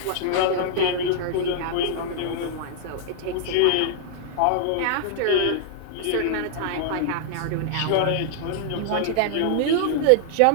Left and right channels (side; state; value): both; different; correlation -0.01